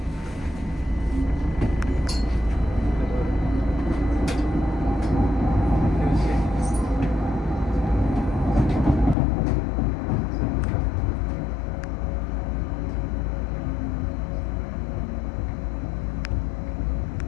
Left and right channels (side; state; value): right; drops out; at 9.2 s